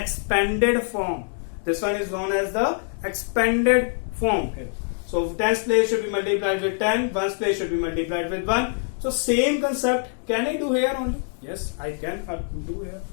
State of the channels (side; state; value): right; silent; 57 dB below the other